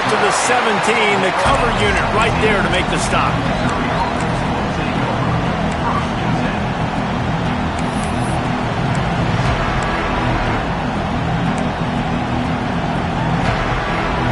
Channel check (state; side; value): identical; both; correlation 1.00